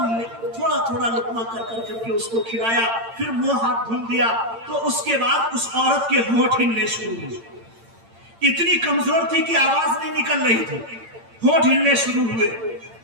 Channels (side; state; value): left; late; 8.8 ms